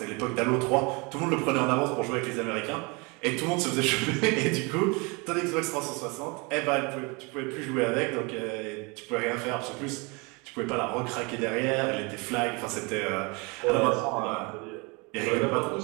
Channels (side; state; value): left; quieter; 29.1 dB